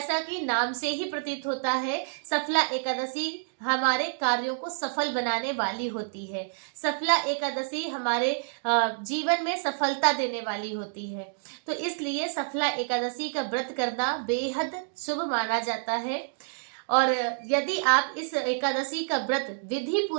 कि नाम से ही प्रतीत होता है, सफला एकादशी हमारे कार्यों को सफल बनाने वाली होती है। सफला एकादशी हमारे जीवन में सफलता देने वाली होती है। तो इसलिए सफला एकादशी का व्रत करना बेहद शुभ माना जाता है। और यदि आप इस एकादशी का व्रत विधि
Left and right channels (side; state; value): left; silent; digital silence